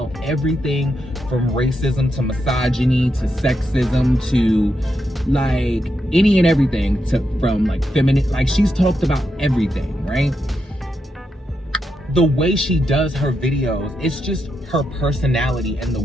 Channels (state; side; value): normal; both; correlation 0.84